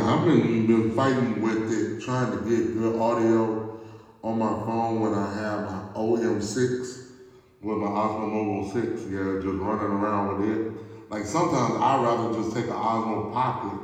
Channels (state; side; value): identical; both; correlation 1.00